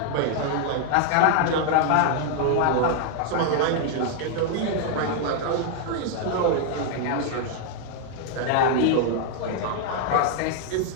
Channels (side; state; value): both; different; correlation 0.00